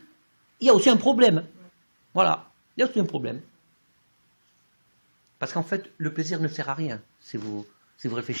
il y a aussi un problème. Voilà. Il y a aussi un problème. Parce qu'en fait, le plaisir ne sert à rien, si vous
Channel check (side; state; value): both; inverted; correlation -1.00